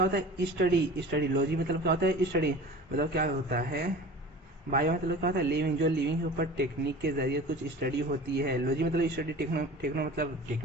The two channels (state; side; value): normal; both; correlation 0.39